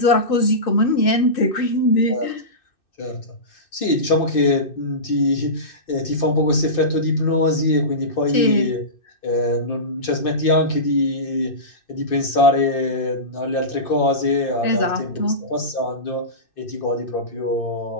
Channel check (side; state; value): right; late; 2.6 ms